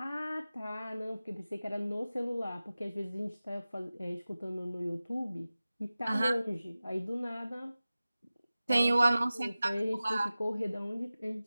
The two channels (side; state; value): both; inverted; correlation -0.96